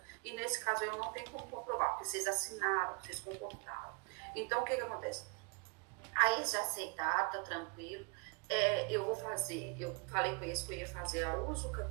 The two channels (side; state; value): left; quieter; 33.3 dB